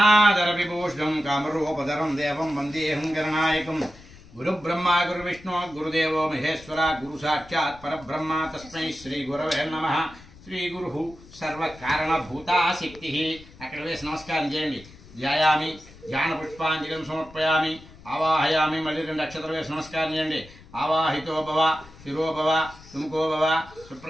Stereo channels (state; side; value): noise; left; rumble, 21 dB below the sound